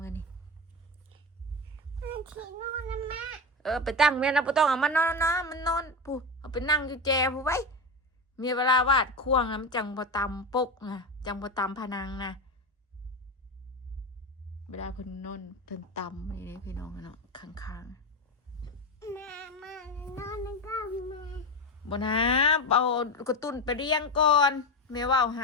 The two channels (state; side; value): normal; both; correlation 0.19